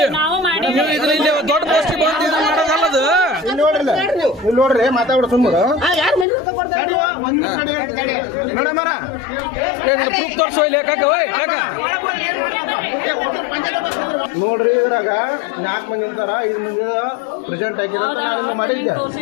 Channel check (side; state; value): right; drops out; at 6.2 s